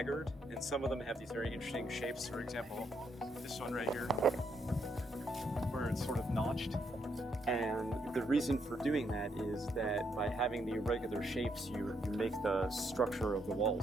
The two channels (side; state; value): both; normal; correlation 0.76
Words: and some of them have these very interesting shapes. For example, this one right here, where it's sort of notched. And the reason for doing that is that by having the irregular shapes, you make the structure of the